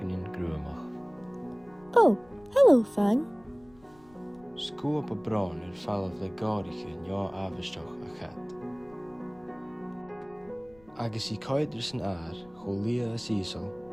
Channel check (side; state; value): left; noise; rumble, 27 dB below the sound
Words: grúamach. Oh, hello, Fang. Scúab a brán fallah le gáiriche neo avisteach a chat. Agus I caidir san air, cho lia a sísal,